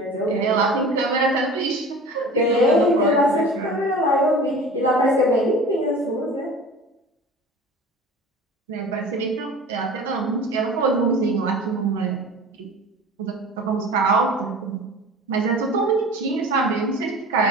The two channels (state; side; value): normal; both; correlation 0.39